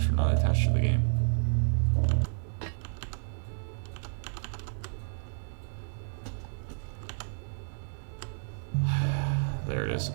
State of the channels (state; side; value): silent; left; digital silence